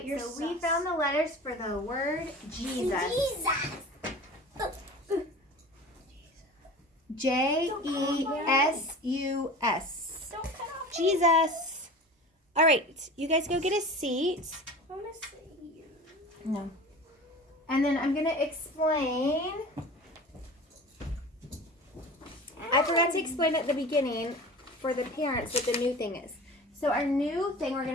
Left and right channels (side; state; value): both; normal; correlation 0.37